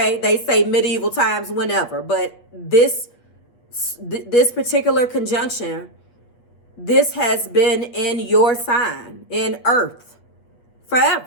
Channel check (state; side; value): late; right; 8.4 ms